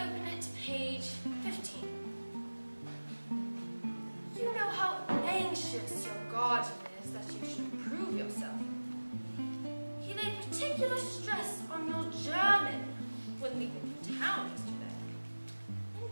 it to page 15. You know how anxious your guardian is that you should improve yourself. He laid particular stress on your German when leaving town yesterday.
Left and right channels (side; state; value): both; inverted; correlation -1.00